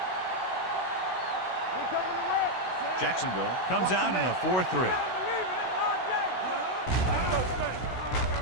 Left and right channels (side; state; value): right; late; 16 ms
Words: Jacksonville comes out in a 4-3.